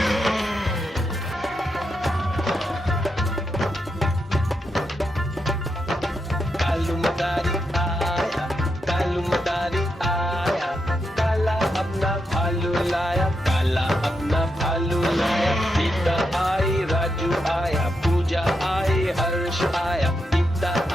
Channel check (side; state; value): both; normal; correlation 0.84